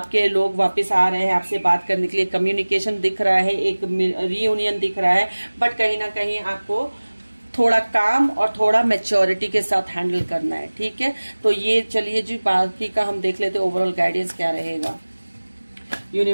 लोग वापस आ रहे हैं आपसे बात करने के लिए, कम्युनिकेशन दिख रहा है, एक रीयूनियन दिख रहा है, बट कहीं ना कहीं आपको थोड़ा काम और थोड़ा मैच्योरिटी के साथ हैंडल करना है, ठीक है। तो ये चलिए जी बाकी का हम देख लेते हैं ओवरऑल गाइडेंस क्या रहेगा।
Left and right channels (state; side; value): inverted; both; correlation -1.00